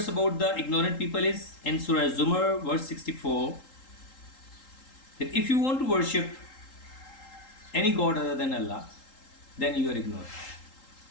about the ignorant people is in Surah Zumar, verse 64, that if you want to worship any god other than Allah, then you are ignorant.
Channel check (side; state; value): right; late; 3.8 ms